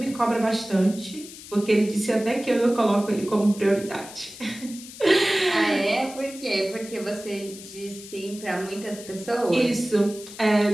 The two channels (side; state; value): left; noise; hiss, 15 dB below the sound